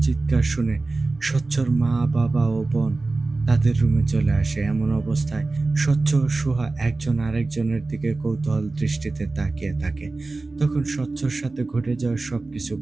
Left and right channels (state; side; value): quieter; left; 3.4 dB